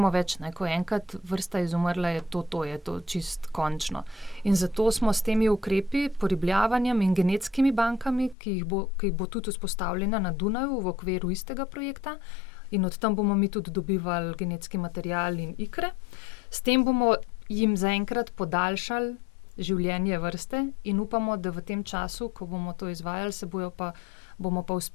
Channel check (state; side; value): drops out; right; at 8.3 s